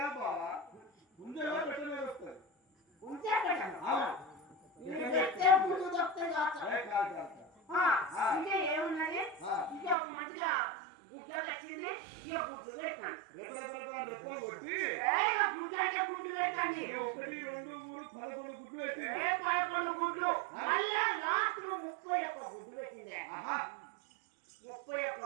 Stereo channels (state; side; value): drops out; left; at 10.0 s